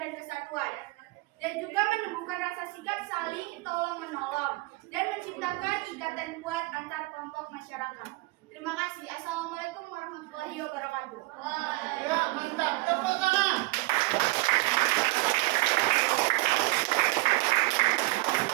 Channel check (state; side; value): quieter; left; 22.8 dB